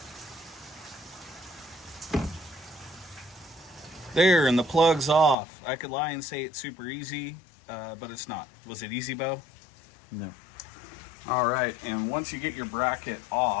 There, and the plug's off. I could lie and say it's super easy, but it's not. Was it easy, Beau? No. All right, and once you get your bracket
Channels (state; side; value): drops out; right; at 5.4 s